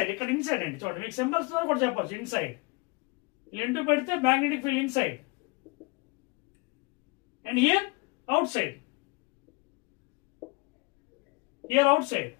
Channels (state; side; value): quieter; right; 27.4 dB